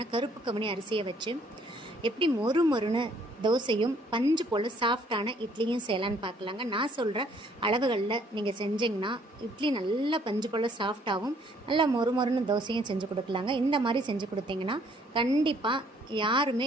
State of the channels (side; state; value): both; normal; correlation 0.63